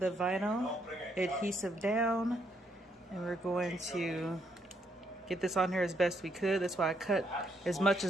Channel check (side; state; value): both; normal; correlation 0.74